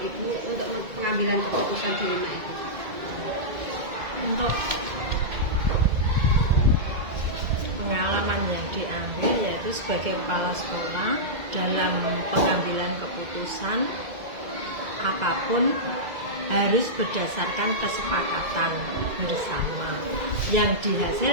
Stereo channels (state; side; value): late; left; 2.1 ms